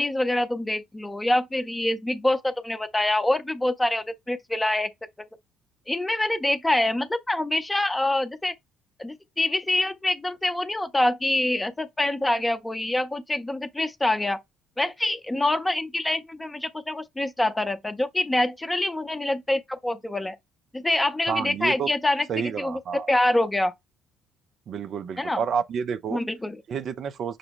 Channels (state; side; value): normal; both; correlation 0.95